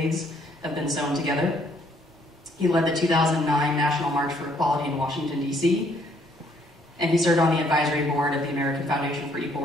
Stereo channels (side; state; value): both; normal; correlation 0.66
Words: have been sewn together. He led the 2009 National March for Equality in Washington, D.C., and he served on the advisory board of the American Foundation for